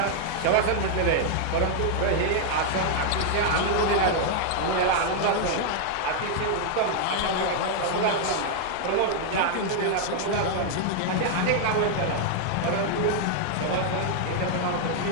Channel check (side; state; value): both; different; correlation 0.00